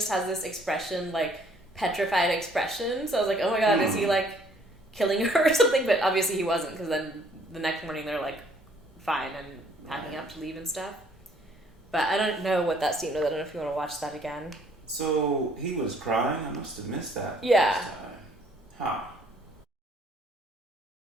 has this expression, like petrified expression. So I was like, oh my god, is he like killing her or something? But obviously he wasn't, because then the next morning they're like fine and packing up to leave and stuff. But I don't know what that scene was. I don't know if you want to watch that again. So he was crying? I must have missed that. Yeah. Huh.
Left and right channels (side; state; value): both; normal; correlation 0.61